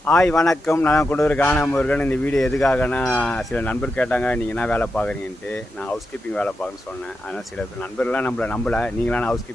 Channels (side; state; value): both; normal; correlation 0.88